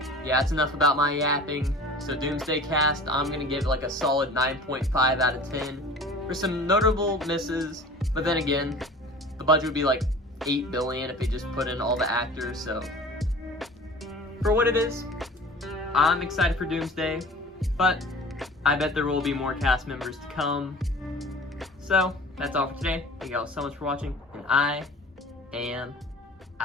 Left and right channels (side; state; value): both; normal; correlation 0.42